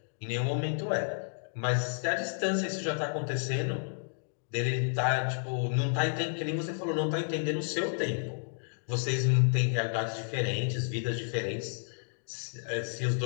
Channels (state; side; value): silent; right; digital silence